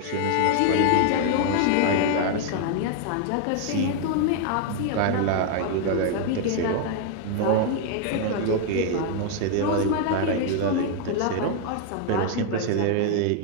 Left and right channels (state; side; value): different; both; correlation 0.00